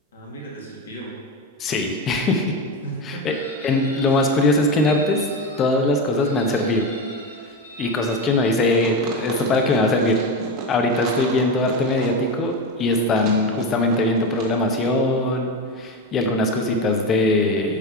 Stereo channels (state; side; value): normal; both; correlation 0.18